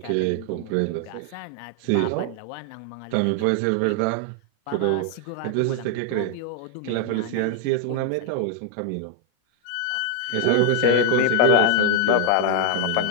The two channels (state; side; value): different; both; correlation 0.00